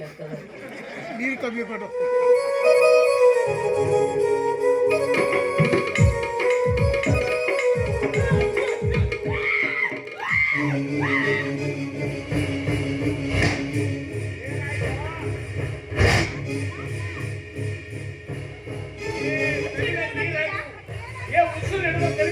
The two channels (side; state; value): both; identical; correlation 1.00